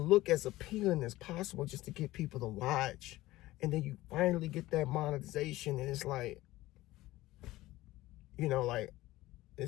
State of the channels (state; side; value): quieter; right; 17.4 dB